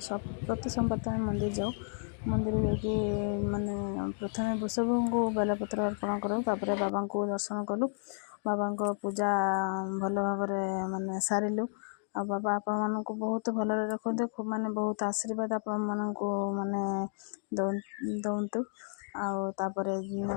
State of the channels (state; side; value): silent; right; digital silence